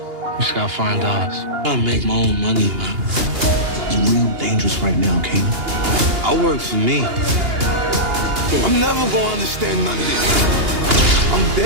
We just gotta find ours. I make my own money, man. It's real dangerous right now, Kanan. I work for me. I'm never gonna understand none of this. I'm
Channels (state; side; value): late; left; 2.8 ms